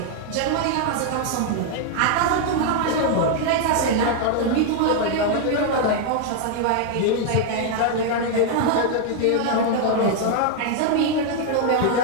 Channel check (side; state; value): both; different; correlation 0.00